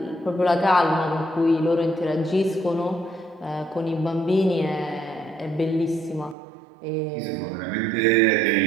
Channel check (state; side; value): drops out; left; at 6.4 s